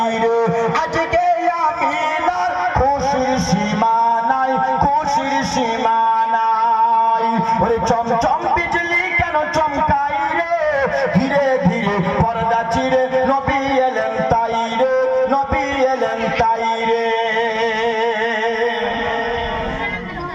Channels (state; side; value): identical; both; correlation 1.00